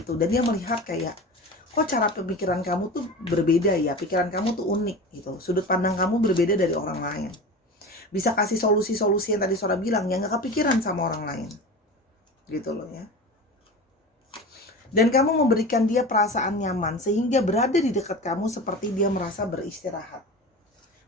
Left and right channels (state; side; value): normal; both; correlation 0.31